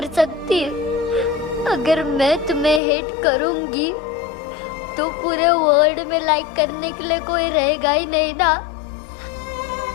सकती। अगर मैं तुम्हें हेट करूंगी तो पूरे वर्ल्ड में लाइक करने के लिए कोई रहेगा ही नहीं ना।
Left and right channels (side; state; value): right; drops out; at 2.8 s